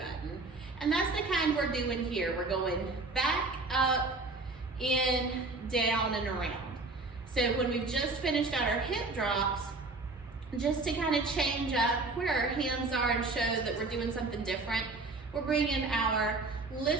And that's the kind we're doing here. We're going back, up, in, down, and around. So when we've just finished out our hip drops, just to kind of change up where our hands are and show that we're doing something different, we're bringing our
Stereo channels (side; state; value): left; quieter; 3.4 dB